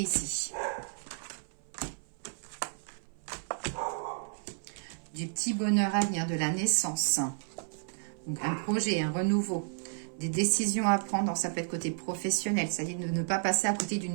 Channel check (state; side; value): silent; left; 56 dB below the other